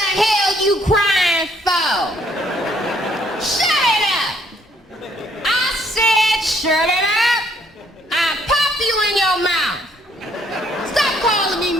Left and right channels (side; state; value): both; normal; correlation 0.67